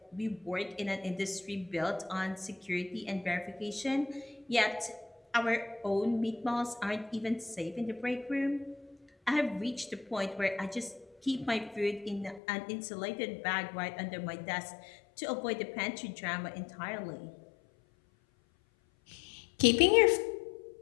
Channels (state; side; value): drops out; right; at 12.4 s